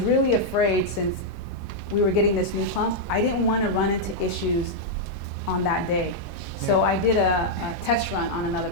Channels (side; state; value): both; normal; correlation -0.04